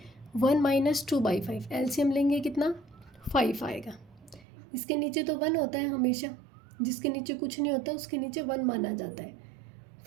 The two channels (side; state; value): left; drops out; at 4.5 s